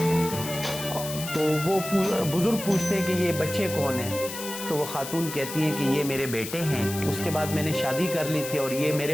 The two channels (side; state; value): left; noise; hiss, 9 dB below the sound